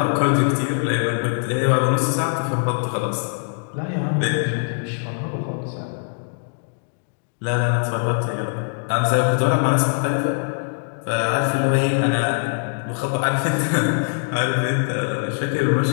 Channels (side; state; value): right; silent; digital silence